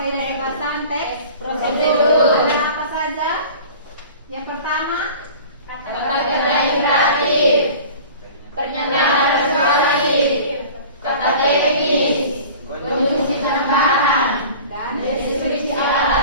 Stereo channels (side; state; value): both; inverted; correlation -0.42